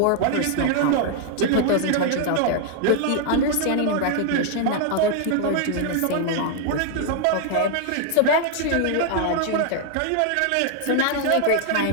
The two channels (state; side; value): different; both; correlation 0.00